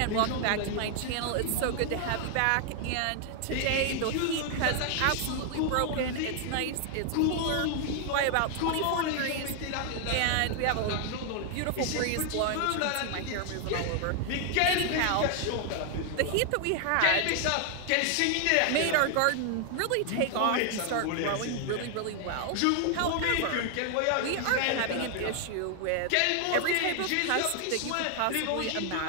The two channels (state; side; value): different; both; correlation 0.00